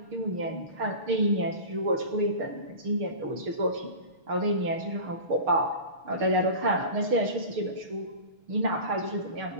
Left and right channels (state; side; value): late; left; 6.5 ms